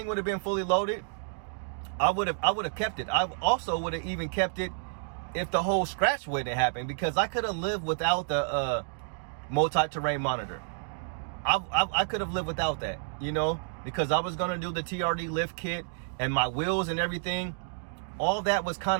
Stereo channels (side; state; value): left; silent; digital silence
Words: would have been fully loaded, I would have kept it. I also would have even kept it if the whole scratch wouldn't have happened, because I could have lived without the multi-terrain monitor. I could have lived without that, you know, because I was going to do the TRD lift kit, and my wheels and everything, all that was kind